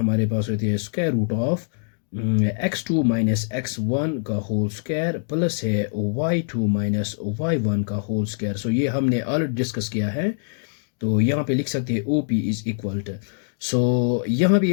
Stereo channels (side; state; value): right; silent; digital silence